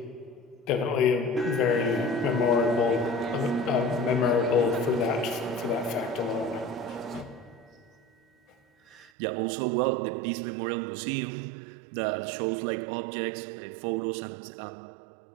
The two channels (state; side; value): drops out; left; at 9.1 s